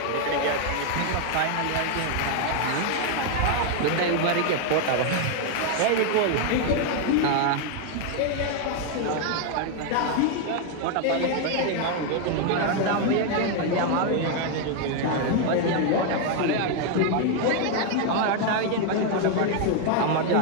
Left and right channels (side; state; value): both; different; correlation 0.00